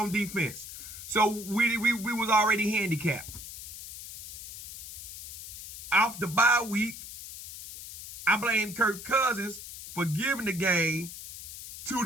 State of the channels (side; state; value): left; noise; hiss, 12 dB below the sound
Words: defense. So we was already handicapped. Off the bye week, I blame Kirk Cousins for giving the game to